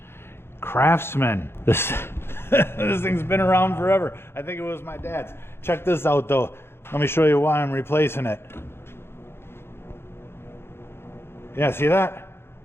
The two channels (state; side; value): late; right; 0.11 ms